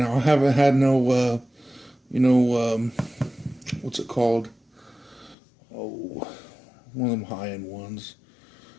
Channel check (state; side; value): drops out; right; at 5.4 s